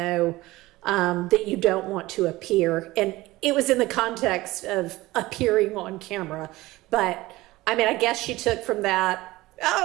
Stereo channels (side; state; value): left; quieter; 18.8 dB